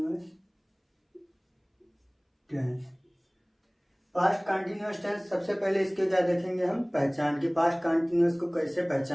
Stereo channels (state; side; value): identical; both; correlation 1.00